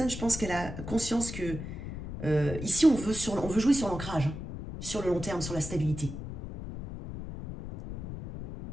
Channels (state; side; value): noise; left; rumble, 8 dB below the sound